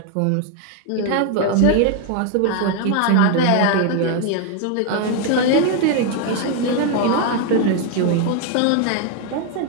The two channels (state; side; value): different; both; correlation 0.01